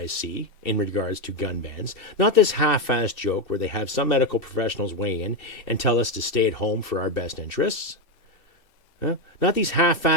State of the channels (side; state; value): right; late; 3.0 ms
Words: in regards to gun bans, not this half-assed joke where they have some medical professionals weigh in and tell us to stay at home for our best interests, not these